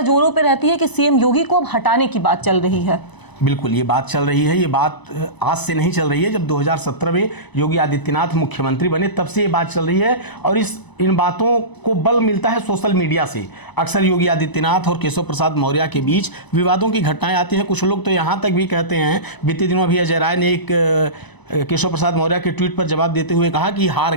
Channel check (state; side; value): late; right; 1.0 ms